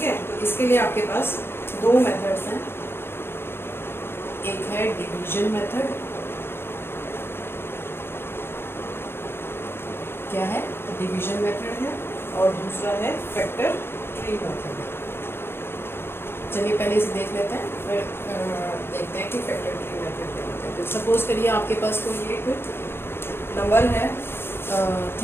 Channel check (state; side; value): late; right; 0.11 ms